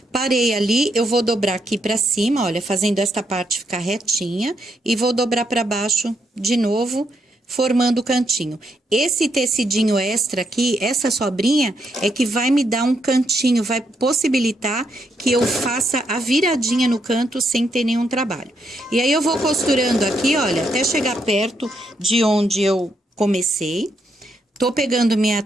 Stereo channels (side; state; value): both; normal; correlation 0.78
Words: Parei ali, eu vou dobrar aqui pra cima, olha, fazendo esta parte ficar retinha. E vou dobrar pra baixo de novo, formando o cantinho. Esse tecidinho extra aqui, essa sobrinha, é que vai me dar um cantinho, vai possibilitar que eu faça a viradinha no canto sem ter nenhum trabalho. E aí, eu vou costurando aqui, olha, até chegar perto de onde eu comecei. Tô pegando minha